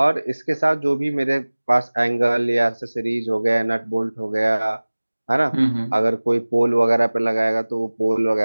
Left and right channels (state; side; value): inverted; both; correlation -1.00